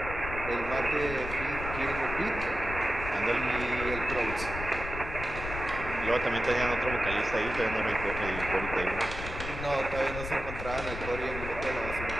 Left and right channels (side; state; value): left; noise; rumble, 7 dB below the sound